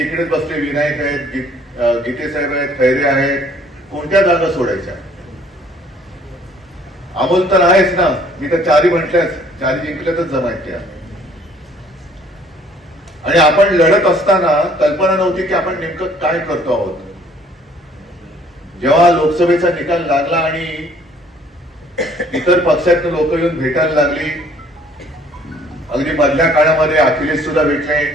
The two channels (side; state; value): both; normal; correlation 0.58